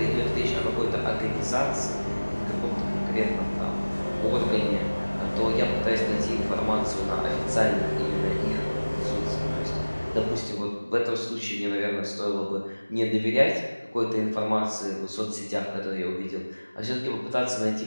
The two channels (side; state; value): both; inverted; correlation -1.00